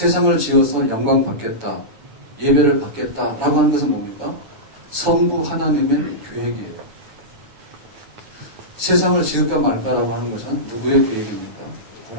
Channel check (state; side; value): late; left; 9.2 ms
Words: 지어서 영광 받겠다, 예배를 받겠다라고 하는 것은 뭡니까? 성부 하나님의 계획이에요. 세상을 지을까 말까라고 하는 것은 누구의 계획입니까?